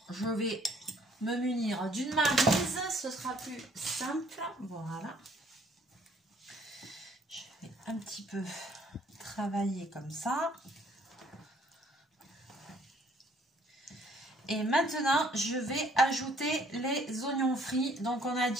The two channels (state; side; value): normal; both; correlation 0.61